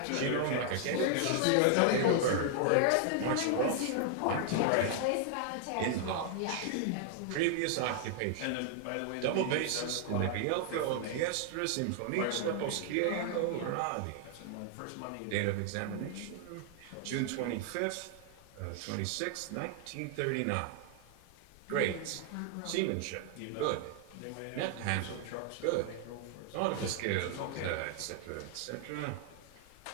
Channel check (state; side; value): different; both; correlation 0.00